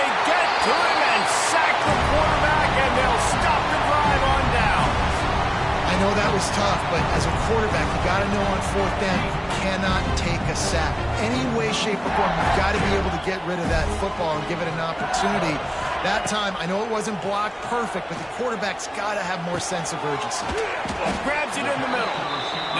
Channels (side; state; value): both; identical; correlation 1.00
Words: get to him and sack the quarterback, and they'll stop the drive on down. I know that was tough, but as a quarterback, you got to know on fourth down, you cannot take a sack. Any way, shape, or form, you've got to be able to get rid of that football and give it an opportunity. That time, I know it wasn't blocked perfect, but the quarterback's got to have more sense of urgency. Grabs it in the middle.